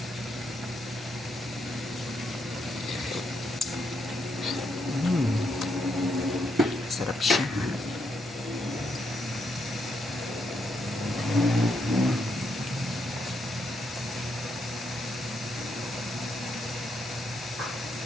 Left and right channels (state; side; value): normal; both; correlation 0.78